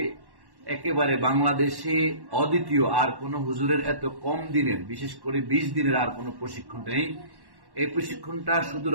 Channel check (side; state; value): left; late; 1.1 ms